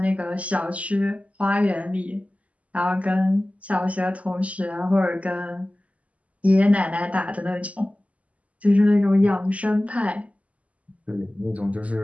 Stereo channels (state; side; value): late; left; 0.068 ms